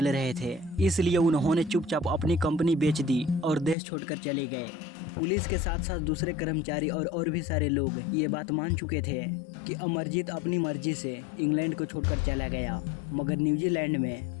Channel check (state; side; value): drops out; right; at 3.8 s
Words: रहे थे, इसलिए उन्होंने चुपचाप अपनी कंपनी बेच दी और देश छोड़कर चले गए। पुलिस के साथ साथ दूसरे कर्मचारी और भी सारे लोग ये बात मान चुके थे कि अमरजीत अपनी मर्जी से इंग्लैंड को छोड़कर चला गया, मगर न्यूजीलैंड